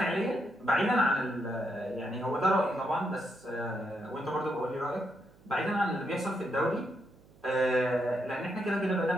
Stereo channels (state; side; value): noise; right; hum, 27 dB below the sound